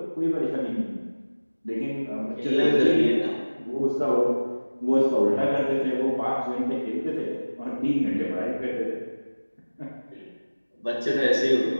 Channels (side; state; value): both; inverted; correlation -1.00